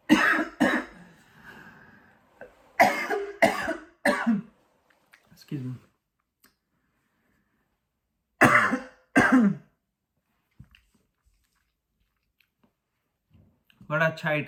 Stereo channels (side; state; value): both; identical; correlation 1.00